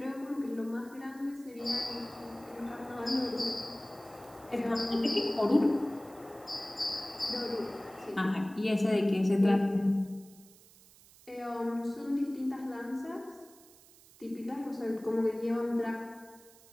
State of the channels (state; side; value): noise; right; hiss, 24 dB below the sound